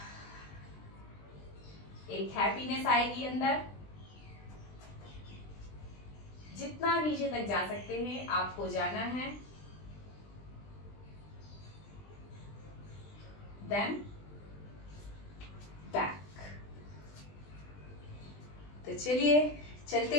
एक हैप्पीनेस आएगी अंदर। जितना नीचे तक जा सकते हैं आपको जाना है, देन बैक। तो चलिए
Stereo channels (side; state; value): right; late; 20 ms